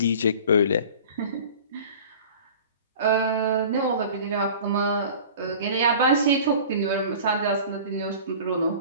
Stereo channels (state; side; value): inverted; both; correlation -0.42